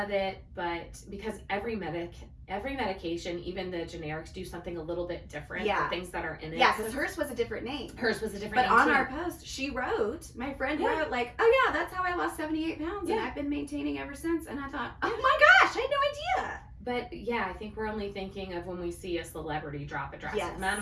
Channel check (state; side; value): identical; both; correlation 1.00